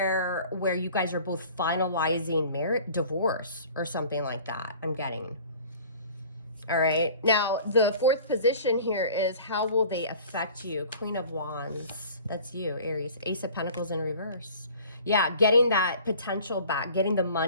where you guys are both finalizing divorce or something like that. I'm getting. All right. Now, the fourth position here is how will they affect you? Queen of Wands. That's you, Aries. Ace of Pentacles in reverse. Yeah, getting that potential back, getting the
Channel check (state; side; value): inverted; both; correlation -0.46